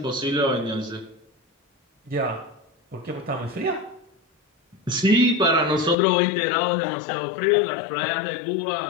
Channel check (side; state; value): right; drops out; at 6.0 s